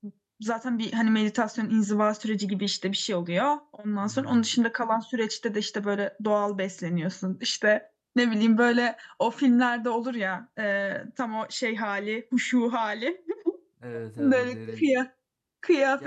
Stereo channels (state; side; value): identical; both; correlation 1.00